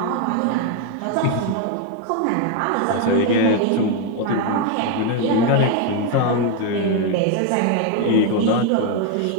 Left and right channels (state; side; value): different; both; correlation 0.01